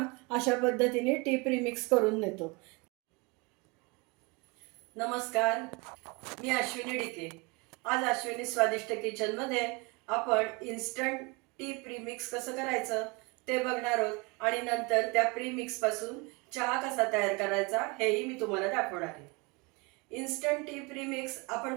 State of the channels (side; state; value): left; quieter; 27.6 dB